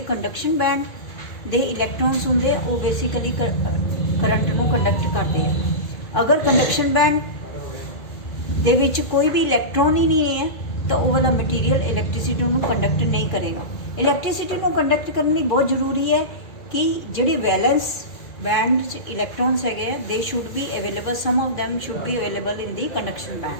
कंडक्शन बैंड दे इलैक्ट्रॉन्स होंदे वो बेसिकली करंट नूं कंडक्ट करते हैं। अगर कंडक्शन बैंड दे विच कोई भी इलैक्ट्रॉन ही नहीं है तो वो वाला मटीरियल इलैक्ट्रिसिटी नूं कंडक्ट नहीं करेगा। इलैक्ट्रिसिटी नूं कंडक्ट करनी बहुत जरूरी है कि जिहड़े वैलेंस बैंड च इलैक्ट्रॉन्स है they should be available, some of them should be available in the conduction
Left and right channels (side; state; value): right; late; 2.4 ms